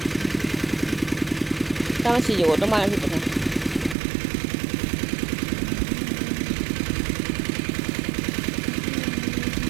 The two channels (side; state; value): left; drops out; at 4.0 s